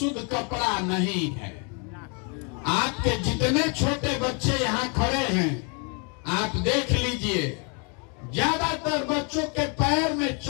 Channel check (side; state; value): right; quieter; 36.2 dB